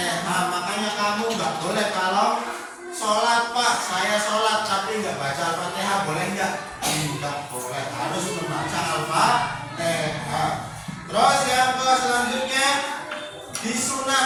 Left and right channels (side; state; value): both; identical; correlation 1.00